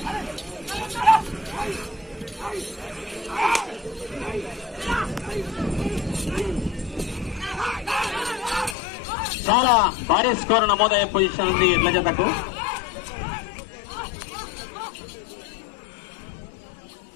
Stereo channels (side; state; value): right; drops out; at 8.8 s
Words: చాలా భారీ స్కోర్ నమోదయ్యే పొజిషన్ ఉంది ఎడ్ల జతకు.